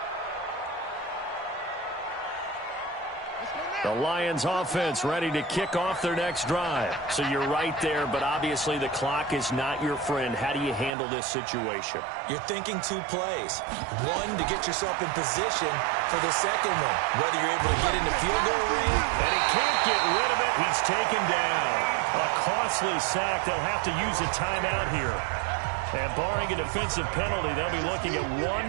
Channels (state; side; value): drops out; left; at 10.9 s